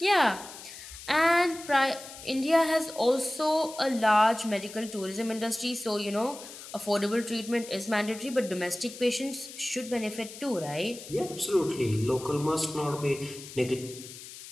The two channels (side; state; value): left; noise; hiss, 14 dB below the sound